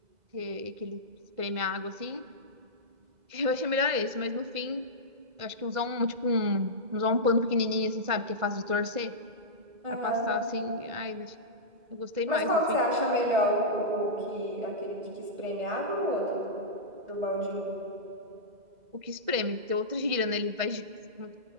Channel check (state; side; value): late; left; 2.0 ms